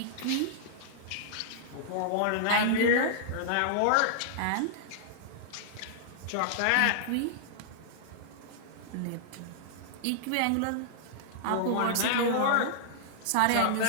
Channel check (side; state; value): both; different; correlation -0.01